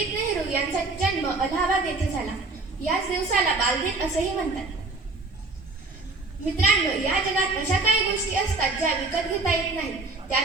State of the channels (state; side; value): quieter; left; 3.5 dB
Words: नेहरू यांचा जन्म अलाहाबाद येथे झाला. याच दिवसाला बालदिन असेही म्हणतात. मित्रांनो, या जगात अशा काही गोष्टी असतात ज्या विकत घेता येत नाही.